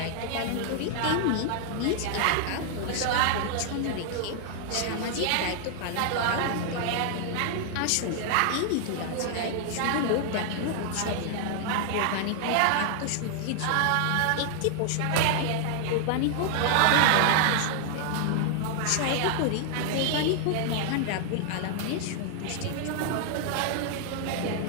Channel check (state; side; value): different; both; correlation 0.00